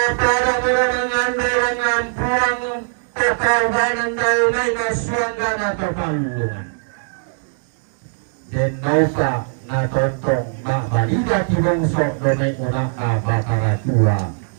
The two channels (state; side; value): silent; left; digital silence